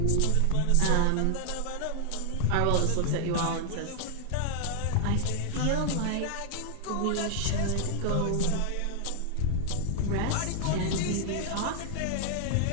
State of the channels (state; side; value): different; both; correlation 0.00